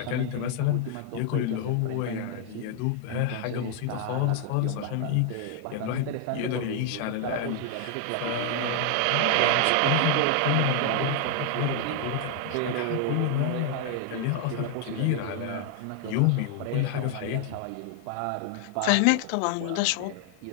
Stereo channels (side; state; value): both; different; correlation 0.00